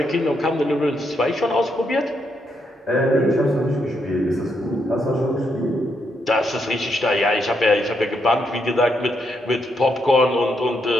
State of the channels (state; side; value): normal; both; correlation 0.78